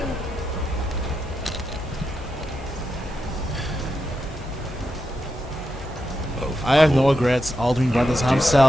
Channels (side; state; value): both; normal; correlation 0.86